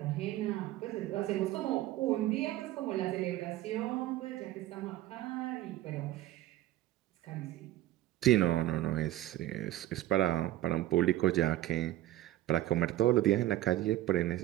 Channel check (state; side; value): quieter; left; 14.8 dB